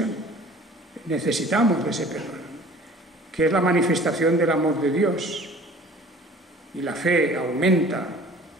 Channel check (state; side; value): normal; both; correlation 0.48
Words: Necesitamos de ese perdón, que es la manifestación del amor de Dios. Y la fe aumenta